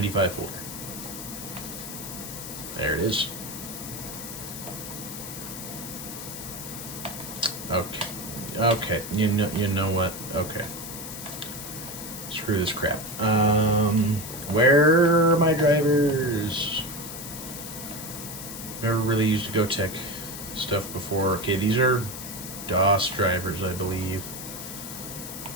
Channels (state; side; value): noise; left; hiss, 9 dB below the sound